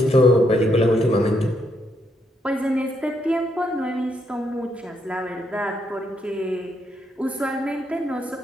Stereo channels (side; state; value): both; normal; correlation 0.77